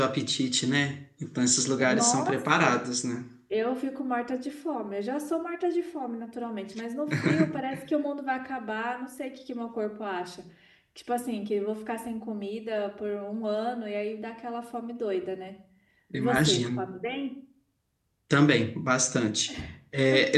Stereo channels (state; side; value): identical; both; correlation 1.00